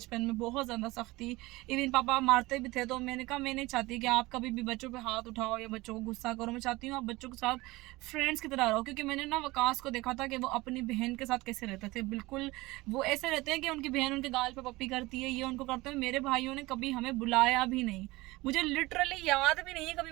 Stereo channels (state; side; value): quieter; left; 20.9 dB